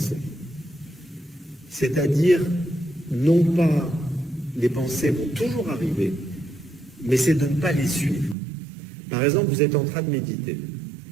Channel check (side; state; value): left; drops out; at 8.3 s